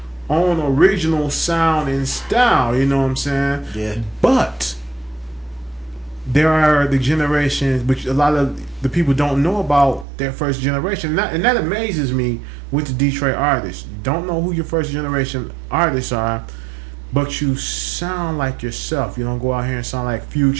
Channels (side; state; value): left; drops out; at 10.1 s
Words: own original sound and style, you know what I'm saying? Yeah. But there are the generations, which a lot of the people don't know about their first generation. And that amazes me with the Detroit artists. You don't know who your first generation artists are, but you sound like yourself. You don't go out here and sound like